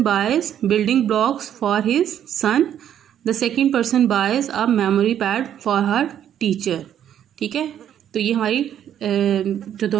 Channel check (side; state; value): left; quieter; 10.1 dB